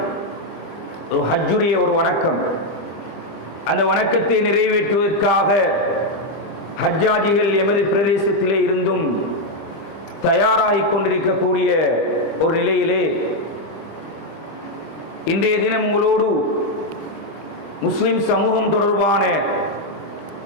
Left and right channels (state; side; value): late; right; 25 ms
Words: ஒரு ஹஜ்ஜுடைய ஒரு வணக்கம், அந்த வணக்கத்தை நிறைவேற்றுவதற்காக ஹஜ்ஜாஜிகள் எமது பிரதேசத்திலே இருந்தும் தயாராகிக் கொண்டிருக்கக்கூடிய ஒரு நிலையிலே இன்றைய தினம் உங்களோடு முஸ்லிம் சமூகம் தொடர்பான